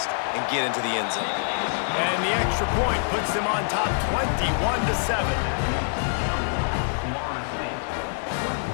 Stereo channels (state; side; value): silent; right; 62 dB below the other